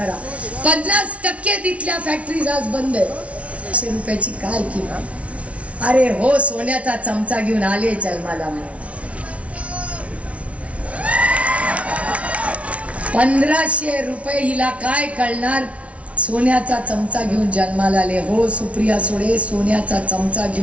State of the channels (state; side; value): late; left; 0.064 ms